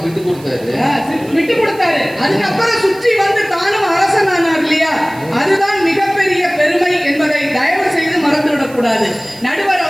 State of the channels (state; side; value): noise; right; hiss, 22 dB below the sound